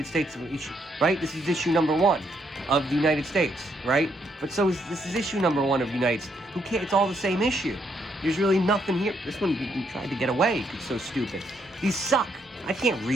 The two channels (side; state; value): both; normal; correlation 0.74